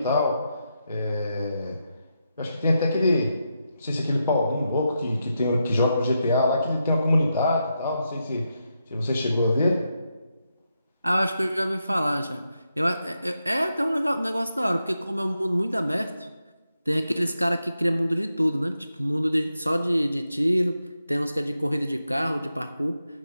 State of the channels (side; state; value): both; inverted; correlation -0.85